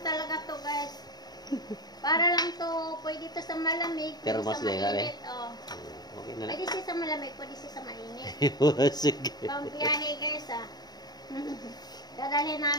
talaga to guys. Para lang to, pwede to sa malamig, Pero pwede mas sa mainit. Oh. Okay na lang. Pwede siya sa malamig, pwede siya sa mainit. Sige. Pang biyahe guys Dadalhin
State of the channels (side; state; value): right; late; 0.20 ms